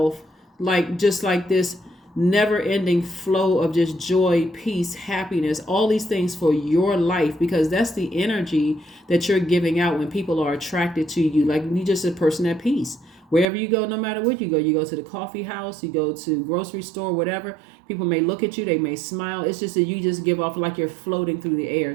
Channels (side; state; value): left; drops out; at 13.5 s